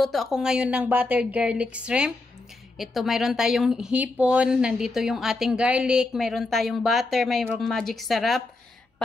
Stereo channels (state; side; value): quieter; right; 3.2 dB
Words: ako ngayon ng buttered garlic shrimp. Ito, mayroon tayong hipon. Nandito yung ating garlic. Mayroon tayong butter. Mayroong magic sarap.